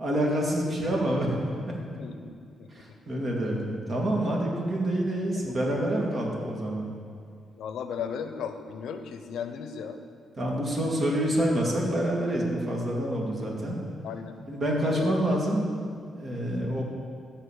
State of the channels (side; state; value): both; normal; correlation 0.77